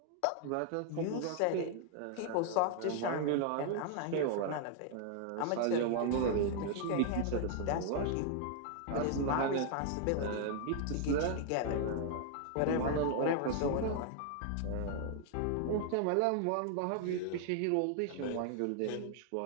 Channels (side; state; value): both; different; correlation 0.00